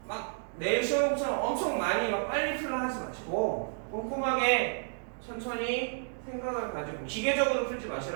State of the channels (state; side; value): silent; left; digital silence